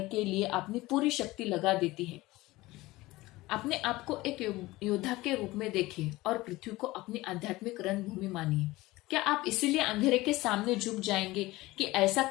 के लिए अपनी पूरी शक्ति लगा देती है। अपने आप को एक योद्धा के रूप में देखिए और पृथ्वी को अपनी आध्यात्मिक रणभूमि मानिए। क्या आप इसीलिए अंधेरे के सामने झुक जाएंगे कि ऐसा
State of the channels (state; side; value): quieter; right; 19.3 dB